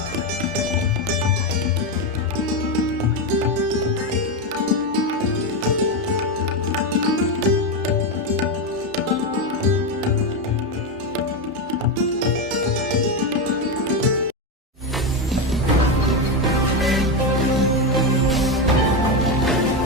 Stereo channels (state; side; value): normal; both; correlation 0.11